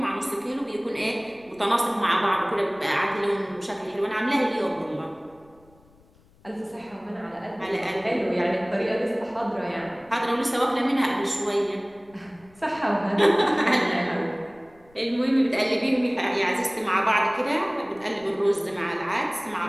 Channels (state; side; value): noise; left; rumble, 29 dB below the sound